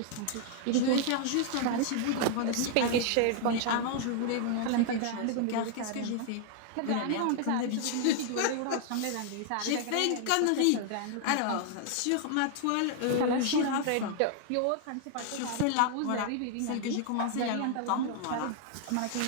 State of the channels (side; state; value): both; different; correlation 0.00